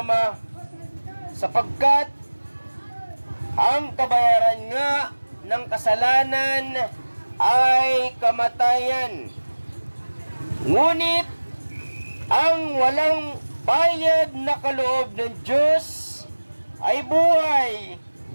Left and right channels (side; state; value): both; inverted; correlation -1.00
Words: sapagkat ang kabayaran nga ng kasalanan ay kamatayan. Ngunit ang walang bayad na kaloob ng Diyos ay buhay